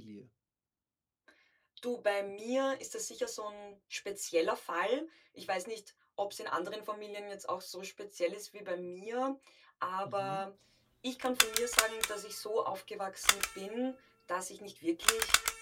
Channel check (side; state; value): both; identical; correlation 1.00